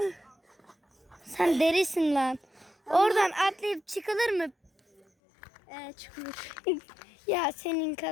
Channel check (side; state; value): right; drops out; at 5.1 s